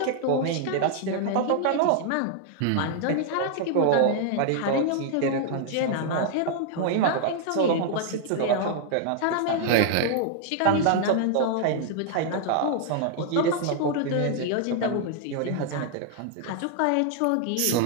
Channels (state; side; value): different; both; correlation 0.00